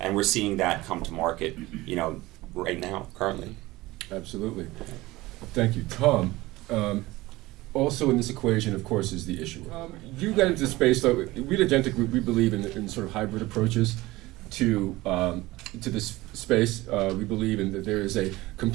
And we're seeing that come to market, right now, currently. Absolutely. Thank you. Tom, also in this equation, of course, is the issuer. You got into space, so we at Agentic, we believe in sort of hybrid approaches to this space. We believe in that there is a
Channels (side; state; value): left; quieter; 19.3 dB